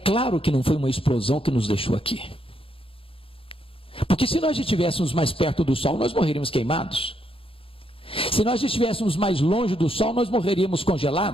que não foi uma explosão que nos deixou aqui. Porque se nós estivéssemos mais perto do Sol, nós morreríamos queimados. Se nós estivéssemos mais longe do Sol, nós morreríamos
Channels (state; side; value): late; right; 0.27 ms